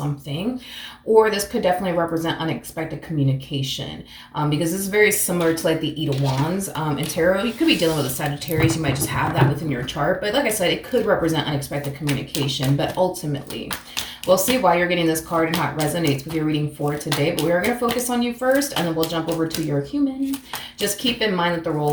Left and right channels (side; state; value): both; identical; correlation 1.00